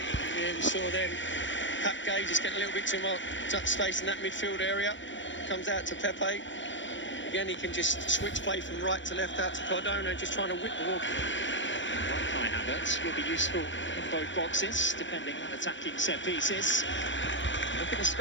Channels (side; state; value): right; late; 0.54 ms